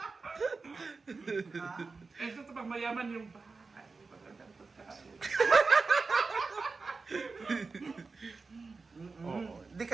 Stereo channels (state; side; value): quieter; left; 4.2 dB